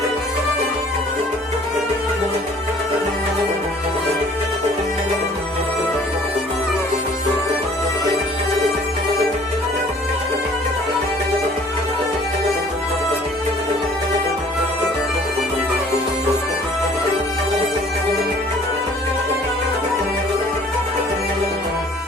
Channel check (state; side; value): normal; both; correlation 0.54